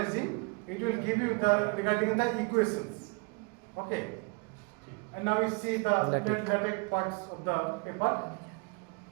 It will give you the regarding the equations. Okay. And now we see the LaTeX parts of the paper.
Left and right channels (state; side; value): quieter; left; 31.6 dB